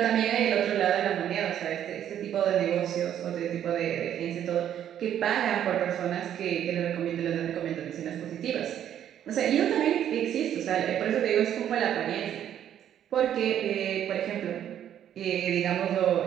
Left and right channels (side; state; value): left; quieter; 10.3 dB